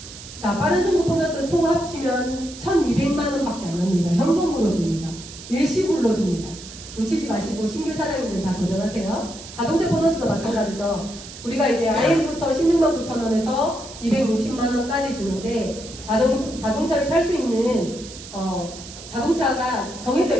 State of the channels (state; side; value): noise; right; hiss, 14 dB below the sound